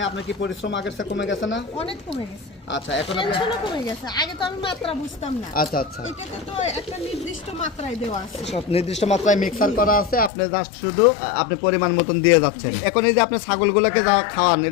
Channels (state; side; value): drops out; right; at 10.3 s